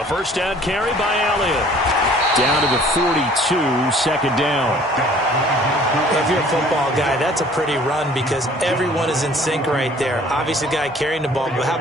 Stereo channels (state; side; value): normal; both; correlation 0.53